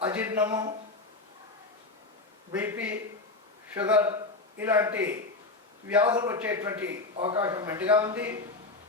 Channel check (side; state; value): right; quieter; 3.4 dB